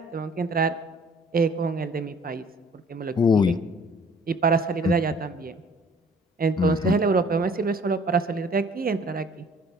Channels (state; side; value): normal; both; correlation 0.54